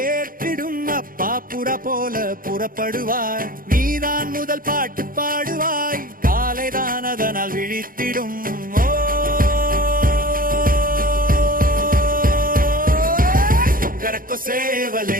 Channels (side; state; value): left; late; 0.41 ms